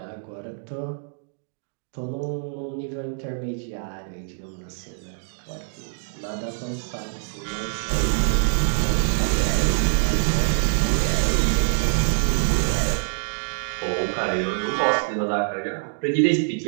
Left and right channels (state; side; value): silent; left; digital silence